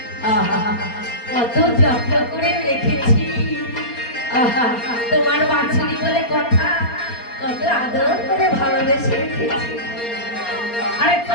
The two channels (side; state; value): right; late; 4.3 ms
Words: আহা, কত যত্ন করে রেখেছি। আহা, তোমার বাছুরি বলে কথা, কত আদর করে ভালোবেসে রেখেছি। আরে